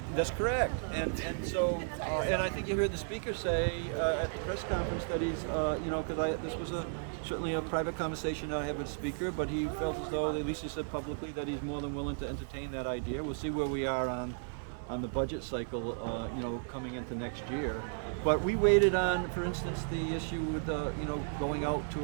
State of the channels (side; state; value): left; silent; 55 dB below the other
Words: that's correct. And so and I think you heard the speaker say at the press conference that he's because this was certainly a private conversation I had with the speaker, but he felt as though, at least he said publicly, that he's more than willing to entertain that idea. We'll see where we are on the budget cycle, coming into next year. But we waited on, for instance, the issue with going out